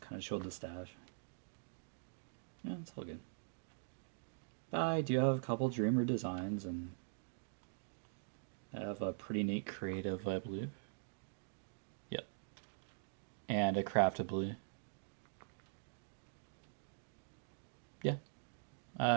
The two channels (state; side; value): silent; left; digital silence